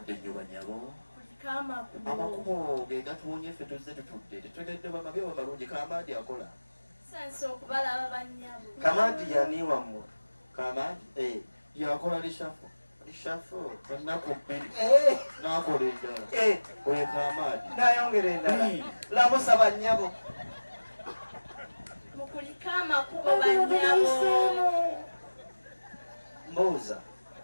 nnyo banyabo kuliko amakubo ge gatuwonye ffe tuzze tutudde tetutegedde bamabi oba malungi kamaadi akola tusanze okubalaba banyabo kamaadi yani wammwe kamaadi yakola lishafu ennaku bbiri n'akola endala weka amaadi nayongera endala lamusa bannyabo mukuliko amakubo banyabo mbuuza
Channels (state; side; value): inverted; both; correlation -1.00